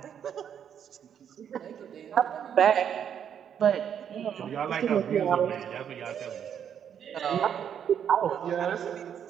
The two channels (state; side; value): quieter; left; 8.6 dB